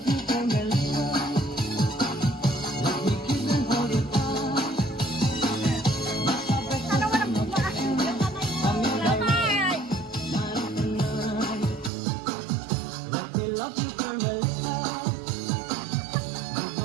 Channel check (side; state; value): left; drops out; at 11.9 s